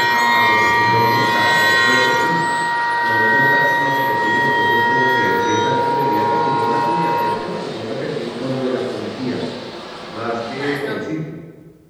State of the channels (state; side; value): identical; both; correlation 1.00